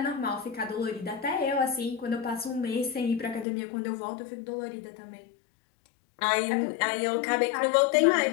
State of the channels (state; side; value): drops out; right; at 3.5 s